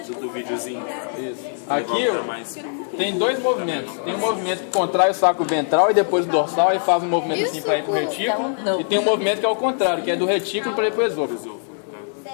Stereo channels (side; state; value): right; silent; digital silence